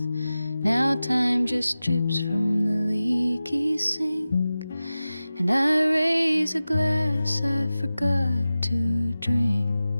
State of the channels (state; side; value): inverted; both; correlation -0.95